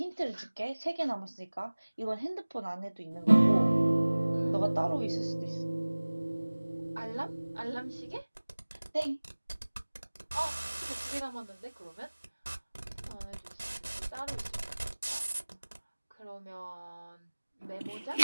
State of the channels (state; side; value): inverted; both; correlation -1.00